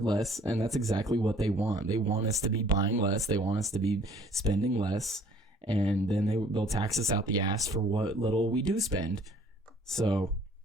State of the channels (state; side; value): normal; both; correlation 0.55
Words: less, and that's exactly what they want. They want us to be buying less. They want us to be spending less, and then they'll tax us out the ass for what little we do spend. So